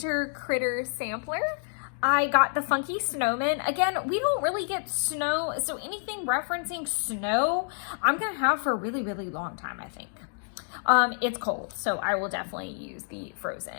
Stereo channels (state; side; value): silent; right; digital silence